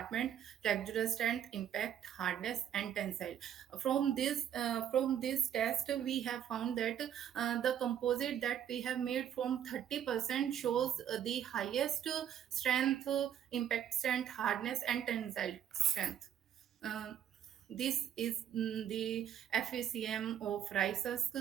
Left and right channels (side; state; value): left; quieter; 9.8 dB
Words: texture, strength, impact, hardness, and tensile. From this test, we have found that the composite that we have made from 30% shows the highest strength, impact strength, hardness, and tensile strength. Uh, this is the FACM of rice husk.